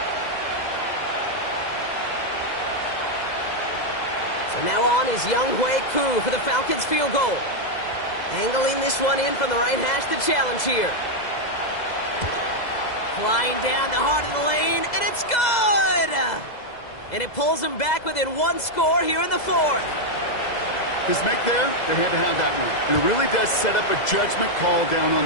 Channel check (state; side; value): late; right; 2.0 ms